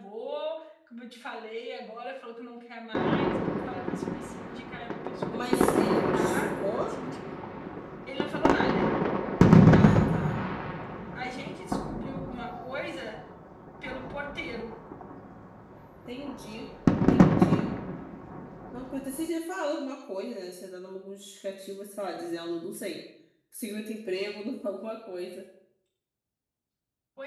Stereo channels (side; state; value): both; identical; correlation 1.00